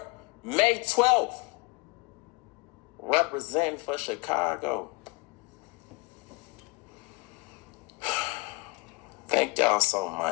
May 12th. Representing for Chicago. Thank y'all so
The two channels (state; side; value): quieter; right; 25.6 dB